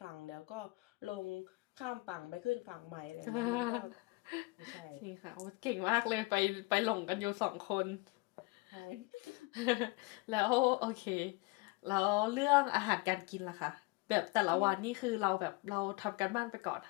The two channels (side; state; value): right; quieter; 25.4 dB